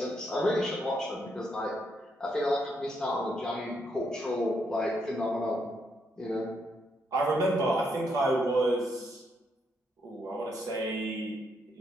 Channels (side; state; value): both; normal; correlation 0.77